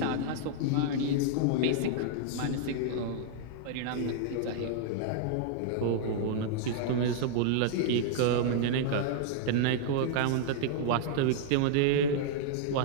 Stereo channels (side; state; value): both; different; correlation -0.01